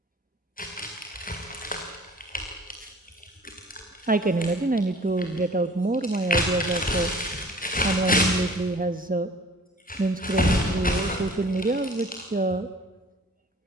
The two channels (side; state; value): both; normal; correlation 0.49